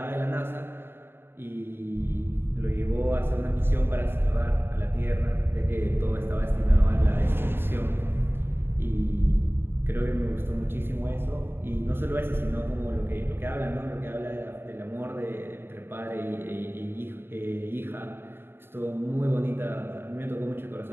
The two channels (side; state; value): left; late; 0.11 ms